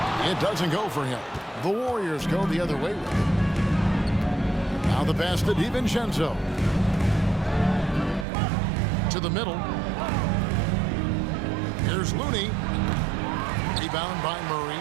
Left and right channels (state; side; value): drops out; left; at 8.2 s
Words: It doesn't go for him. The Warriors go the other way with it. Now the pass to DiVincenzo. To the middle. Here's Looney. Rebound by Murray.